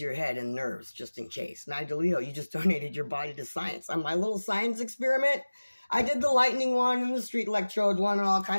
your head and nerves just in case. Magdaleno, you just donated your body to science. On my little science experiment, I did the lightning one and the street electrode one and all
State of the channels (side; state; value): both; inverted; correlation -1.00